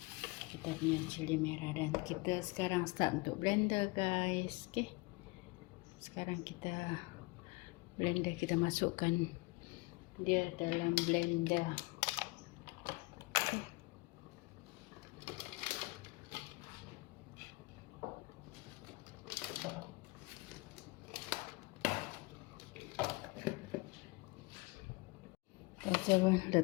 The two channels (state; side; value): quieter; right; 24.5 dB